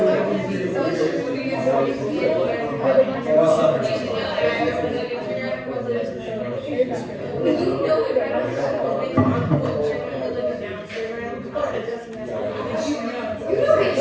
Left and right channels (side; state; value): both; identical; correlation 1.00